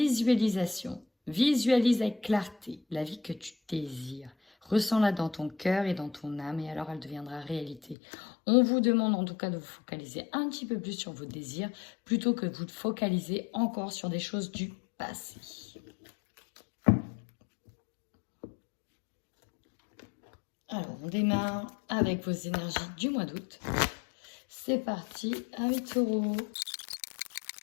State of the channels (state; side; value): drops out; right; at 8.0 s